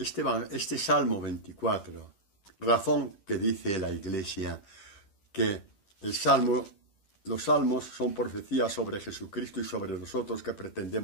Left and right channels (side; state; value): right; late; 10 ms